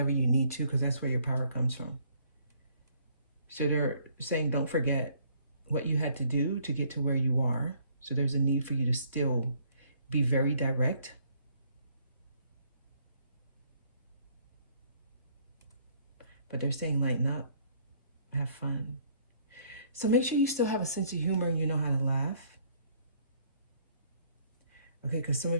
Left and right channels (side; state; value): both; inverted; correlation -0.63